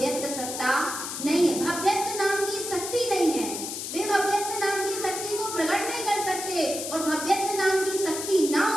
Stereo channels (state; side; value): noise; left; hiss, 6 dB below the sound